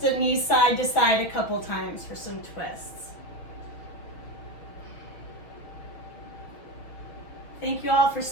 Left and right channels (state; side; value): late; right; 6.2 ms